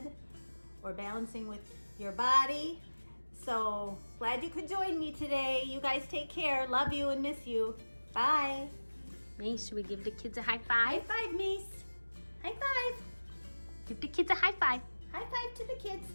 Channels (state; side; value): inverted; both; correlation -1.00